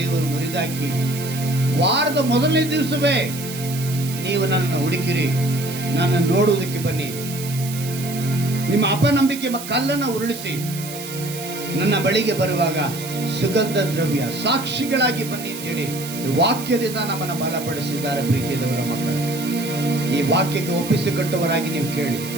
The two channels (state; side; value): noise; right; hiss, 11 dB below the sound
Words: ಮುರಿದಾಕಿ ವಾರದ ಮೊದಲನೇ ದಿವಸವೇ ನೀವು ನನ್ನನ್ನು ಹುಡುಕಿರಿ, ನನ್ನ ನೋಡುವುದಕ್ಕೆ ಬನ್ನಿ, ನಿಮ್ಮ ಅಪನಂಬಿಕೆ ಕಲ್ಲನ್ನು ಉರುಳಿಸಿ ನನ್ನ ಬಳಿಗೆ ಬರುವಾಗ ಸುಗಂಧ ದ್ರವ್ಯ ಸಾಕ್ಷಿಗಳಾಗಿ ಬನ್ನಿ ಅಂತೇಳಿ ವಾಕ್ಯದಿಂದ ನಮ್ಮನ್ನು ಬಲಪಡಿಸಿದ್ದಾರೆ. ಪ್ರೀತಿಯದವರ ಮಕ್ಕಳು, ಈ ವಾಕ್ಯಕ್ಕೆ ಒಪ್ಪಿಸಿಕೊಟ್ಟವರಾಗಿ ನೀವು ಕೇಳಿ.